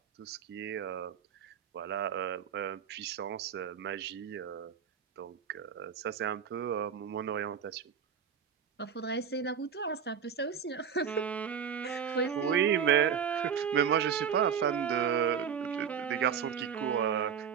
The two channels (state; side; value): quieter; left; 7.6 dB